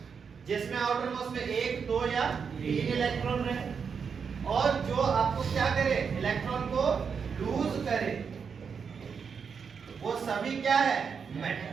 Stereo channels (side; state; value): left; quieter; 6.2 dB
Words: जिसमें आउटर मोस्ट में 1, 2 या 3 इलेक्ट्रॉन रहे, और जो आपको क्या करे? इलेक्ट्रॉन को लूज करे, वो सभी क्या है?